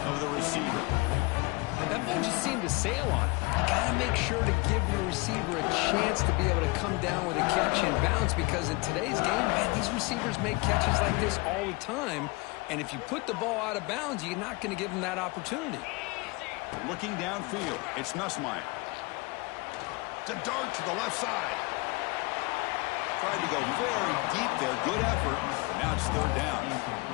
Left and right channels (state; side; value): quieter; right; 25.6 dB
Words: of the receiver. That ball just seemed to sail on. You got to make sure to give your receiver a chance to be able to come down with a catch and bounce, because in today's game, man, these receivers make catches like this all the time. And if you put the ball out of bounds, you're not going to give them that opportunity. Looking downfield, it's Nussmeier. It's a dart to the left side. Tried to go very deep there. Good effort, but now it's third down.